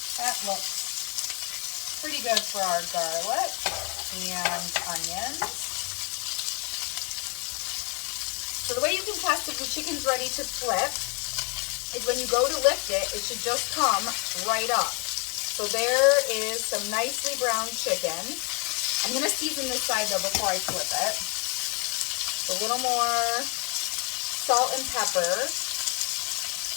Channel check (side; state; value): right; quieter; 33.7 dB